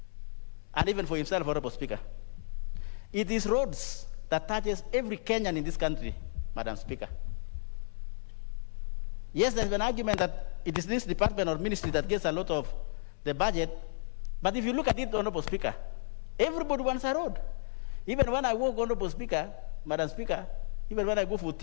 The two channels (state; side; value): silent; right; 56 dB below the other